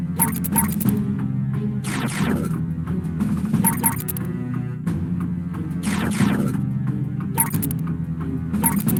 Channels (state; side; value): identical; both; correlation 1.00